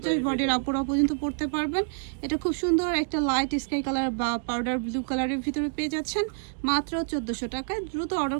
বডির আপুরা পর্যন্ত পড়তে পারবেন। এটা খুব সুন্দর একটা লাইট স্কাই কালার বা পাউডার ব্লু কালারের ভিতরে পেয়ে যাচ্ছেন মাত্র 1400 টাকায়। দ্রুত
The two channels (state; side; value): silent; left; digital silence